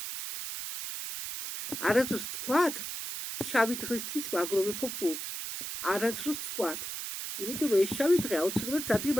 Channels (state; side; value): noise; right; hiss, 6 dB below the sound